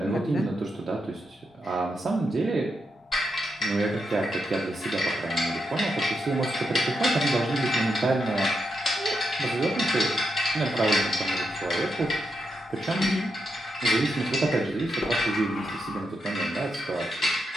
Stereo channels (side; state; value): both; normal; correlation 0.83